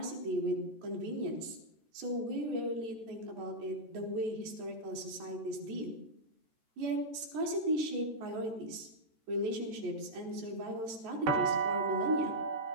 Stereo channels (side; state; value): left; late; 13 ms